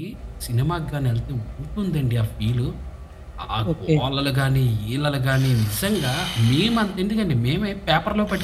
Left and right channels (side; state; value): both; identical; correlation 1.00